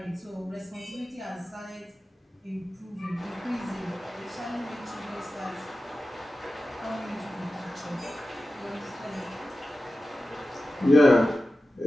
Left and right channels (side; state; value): both; normal; correlation 0.94